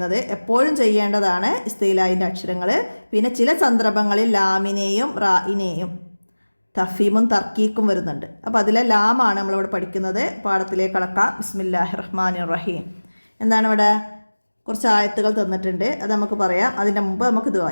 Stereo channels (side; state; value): both; inverted; correlation -1.00